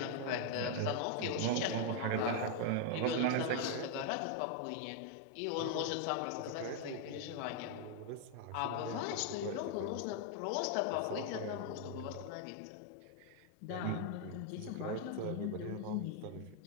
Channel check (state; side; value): different; both; correlation 0.00